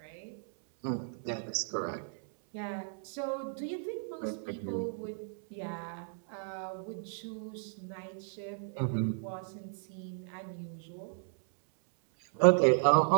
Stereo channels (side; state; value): left; silent; 55 dB below the other